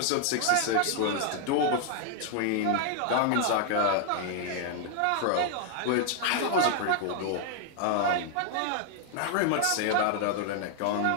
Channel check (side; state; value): both; different; correlation 0.00